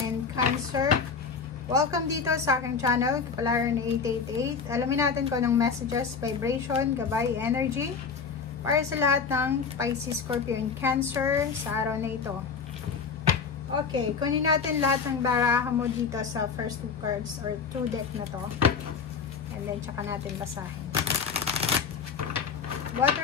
and Cancer. Welcome dito sa aking channel, Kapalaran 888. Alamin natin kung anong messages, vibration, gabay, energy para sa lahat ng Pisces, Scorpio, and Cancer sa araw na ito. Okay, kunin natin lahat ng baraha mo dito sa first two cards or two deck na to. And then, tsaka natin basahin.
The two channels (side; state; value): right; quieter; 5.7 dB